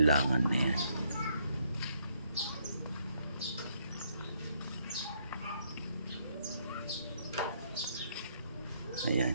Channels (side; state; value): both; inverted; correlation -0.71